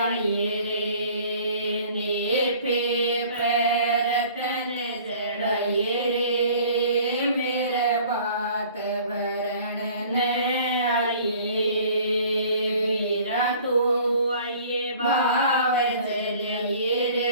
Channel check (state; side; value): inverted; both; correlation -0.50